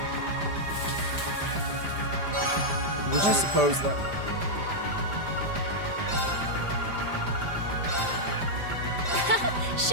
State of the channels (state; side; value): late; left; 5.0 ms